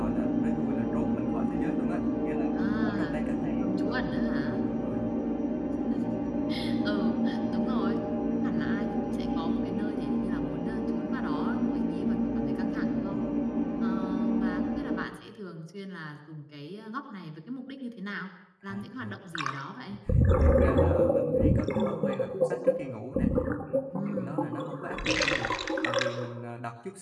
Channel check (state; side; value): identical; both; correlation 1.00